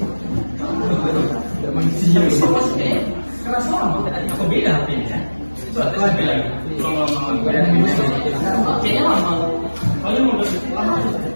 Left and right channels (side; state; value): both; inverted; correlation -1.00